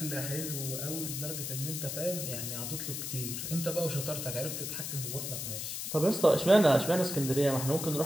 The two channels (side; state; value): left; noise; hiss, 5 dB below the sound